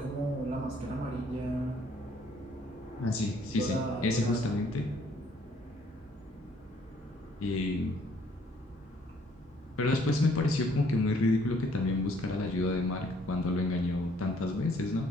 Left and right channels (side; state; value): both; normal; correlation 0.63